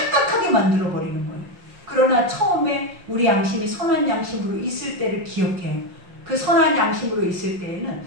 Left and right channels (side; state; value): left; late; 5.7 ms